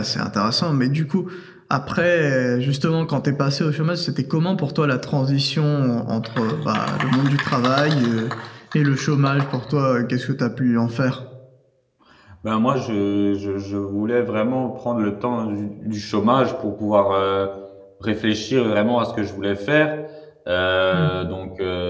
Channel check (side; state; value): both; identical; correlation 1.00